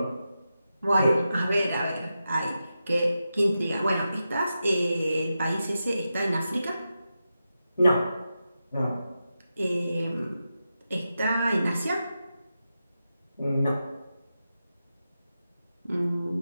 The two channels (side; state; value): both; inverted; correlation -0.90